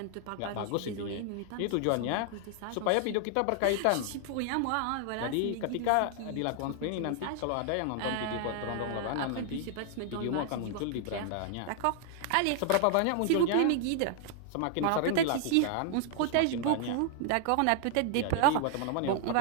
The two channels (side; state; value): both; different; correlation 0.00